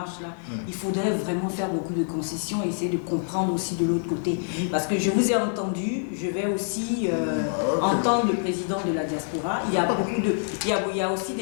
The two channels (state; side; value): silent; right; digital silence